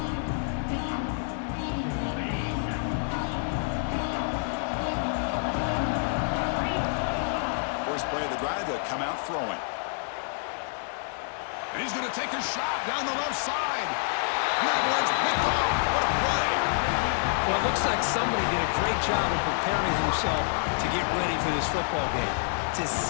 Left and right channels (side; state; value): right; silent; 58 dB below the other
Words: Play of the drive, they'll come out throwing. And he's going to take a shot down the left side. And that one's picked off. What a play. Well, it looks like somebody did a great job of preparing himself to get ready for this football game. It's his